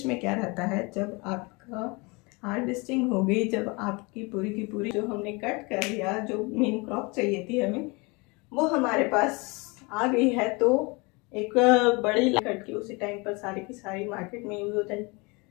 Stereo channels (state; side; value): quieter; right; 27.6 dB